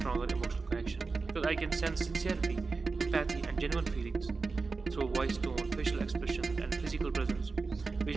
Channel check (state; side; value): quieter; left; 4.2 dB